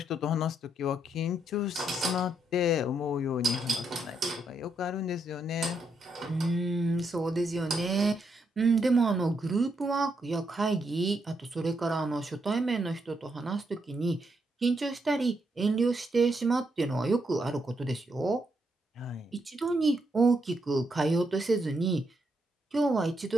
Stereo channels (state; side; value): normal; both; correlation 0.78